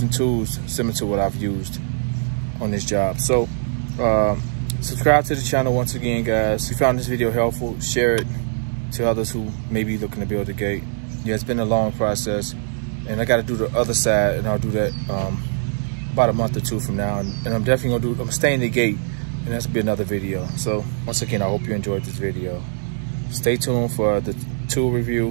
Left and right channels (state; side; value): silent; left; digital silence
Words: tools similar to what I've used. on this job. So subscribe to the channel once again, guys. If you found this video helpful, share it to others who may be looking to build a gate. Yeah, it's been a long process, and I got to do the other side, and I'll do that about a month or two from now. And I'm definitely gonna I'm staying the gate, and that's gonna be another video. So once again, I hope you enjoyed this video. Stay tuned for the tool